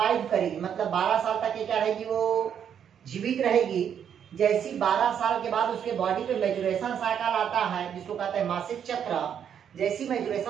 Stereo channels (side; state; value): left; quieter; 8.5 dB